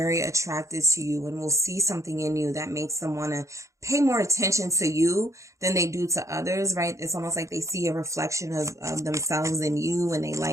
attracted to you and will see something in you that makes them want to pay more attention to you than they do to others, right? It's almost like they see a reflection of themselves in you and they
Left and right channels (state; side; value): late; left; 0.15 ms